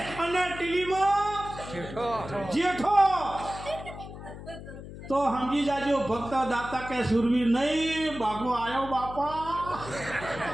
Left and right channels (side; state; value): left; noise; hum, 12 dB below the sound